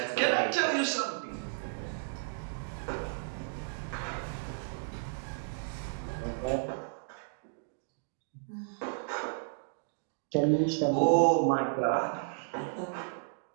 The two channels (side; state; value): left; silent; digital silence